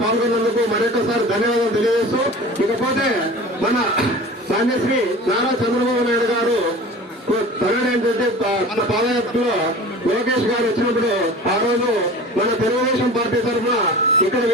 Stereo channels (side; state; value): both; normal; correlation 0.38